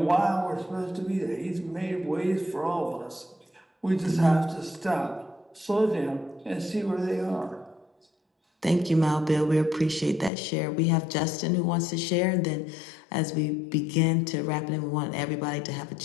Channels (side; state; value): right; drops out; at 10.3 s